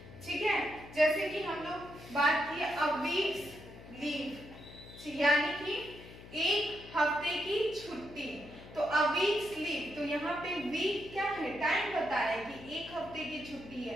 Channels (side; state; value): left; noise; hum, 17 dB below the sound